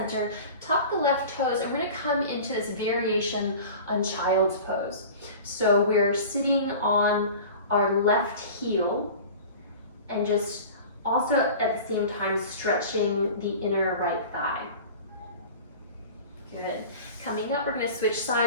tuck the left toes, and we're gonna come into this variation on child's pose. So we're sitting on our left heel and just also at the same time stretching the inner right thigh. Good. Coming up, we're going to switch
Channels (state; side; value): inverted; both; correlation -0.38